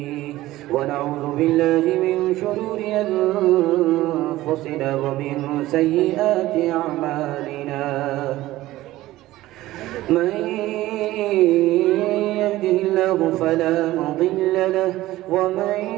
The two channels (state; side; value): quieter; left; 16.4 dB